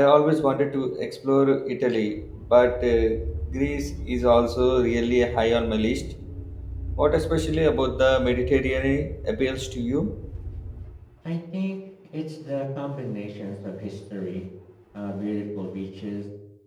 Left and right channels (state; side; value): identical; both; correlation 1.00